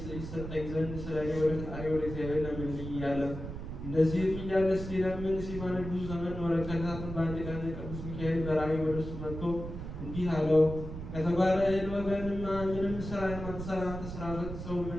ይሰጠኝ ዘንድ ስለ እኔ ወደ ፈጣሪ ወደ እግዚአብሔር ለምንልኝ እያለ እንደዚህም እያለ ሲለምን ሲማልድ ብዙ ዘመን ኖረ። ከዕለታትም በአንድ ቀን ቅዱስ ሚካኤል በራእይ ወደ እሱ መጥቶ እንዲህ አለው፣ ከተባለ እህል ወገንማ ምንም ስራ የማትሰራ አንተ ስራ ፈት ሰው ምን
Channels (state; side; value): noise; right; rumble, 8 dB below the sound